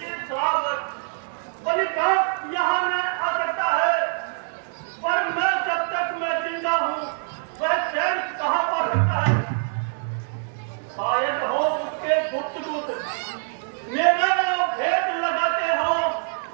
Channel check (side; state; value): left; silent; 62 dB below the other